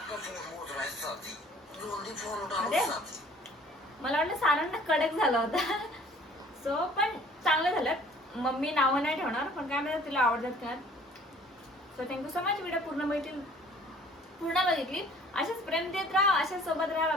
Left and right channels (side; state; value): both; normal; correlation 0.53